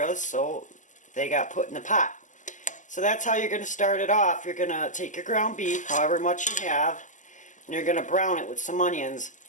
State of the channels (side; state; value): right; late; 0.37 ms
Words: so they got put in the pot. So that's how you're going to start it off. You're going to take your ground beef, however much you have, and you're going to brown it with some onions.